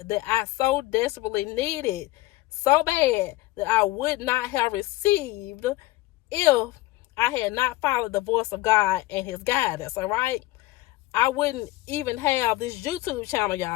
that I so desperately needed, so bad that I would not have received if I had not followed the voice of God and his guidance, all right? I wouldn't even have this YouTube channel,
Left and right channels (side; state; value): right; quieter; 18.7 dB